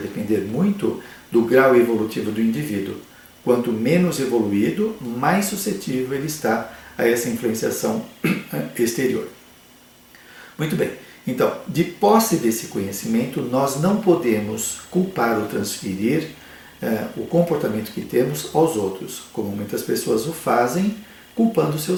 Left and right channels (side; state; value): both; identical; correlation 1.00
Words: depender muito do grau evolutivo do indivíduo. Quanto menos evoluído, mais suscetível ele está a essa influenciação exterior. Muito bem, então, de posse desse conhecimento, nós não podemos culpar ou transferir o comportamento que temos aos outros, como muitas pessoas o fazem, culpando